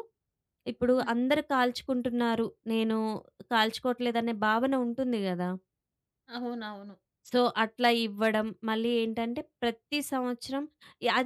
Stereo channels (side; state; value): both; identical; correlation 1.00